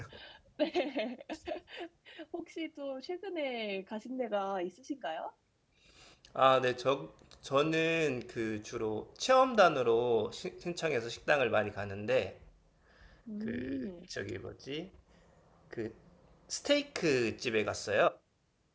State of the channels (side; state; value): both; identical; correlation 1.00